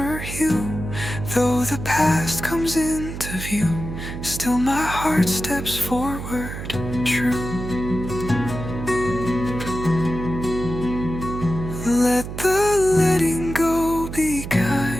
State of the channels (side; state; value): right; noise; hum, 8 dB below the sound